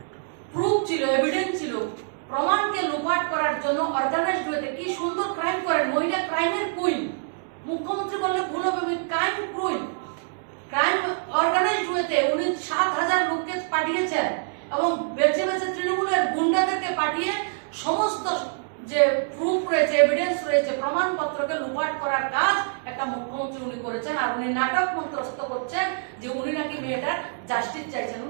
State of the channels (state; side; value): silent; left; digital silence